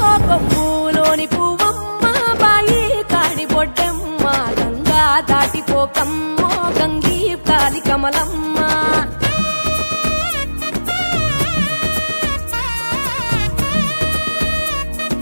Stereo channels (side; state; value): both; inverted; correlation -1.00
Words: కొమ్ములోని పువ్వమ్మ బాయి కాడి బొడ్డెమ్మ గంగా దాటిపోకమ్మ గంగీ తాలి కమలమ్మ